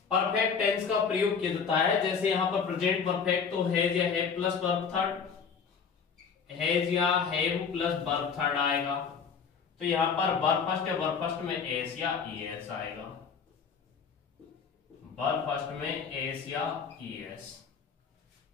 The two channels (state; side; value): quieter; right; 6.2 dB